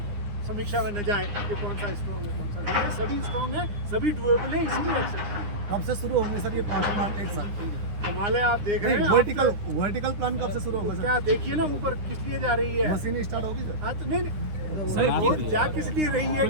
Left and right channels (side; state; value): left; late; 9.8 ms